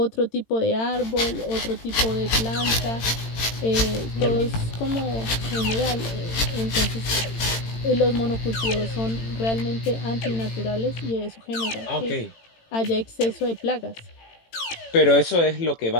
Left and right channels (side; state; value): right; late; 18 ms